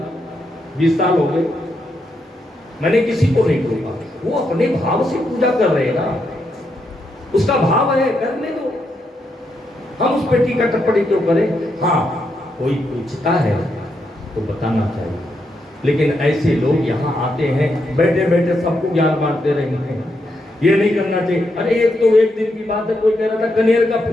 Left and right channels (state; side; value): normal; both; correlation 0.81